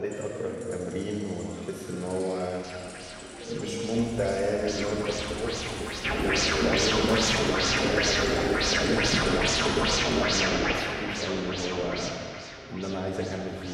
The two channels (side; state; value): both; identical; correlation 1.00